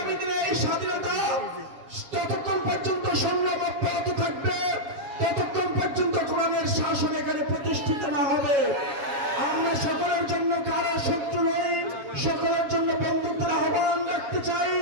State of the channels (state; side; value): late; left; 7.2 ms